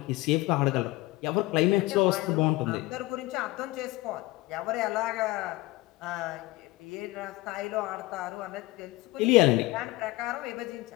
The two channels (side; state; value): right; quieter; 19.7 dB